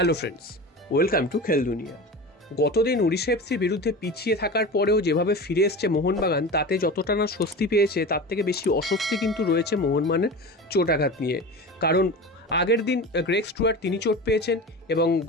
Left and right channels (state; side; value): normal; both; correlation 0.31